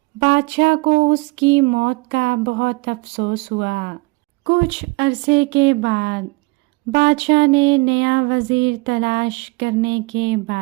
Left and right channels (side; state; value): left; quieter; 25.7 dB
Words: بادشاہ کو اس کی موت کا بہت افسوس ہوا۔ کچھ عرصے کے بعد بادشاہ نے نیا وزیر تلاش کرنے کے